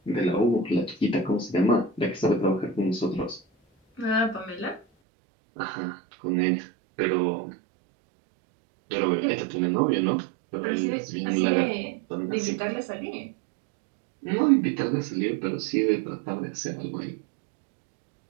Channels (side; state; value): left; drops out; at 4.9 s